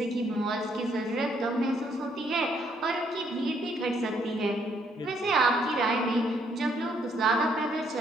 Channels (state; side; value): normal; both; correlation 0.69